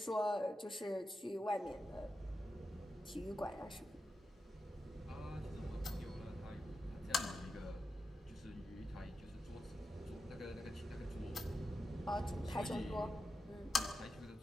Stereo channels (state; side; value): normal; both; correlation 0.88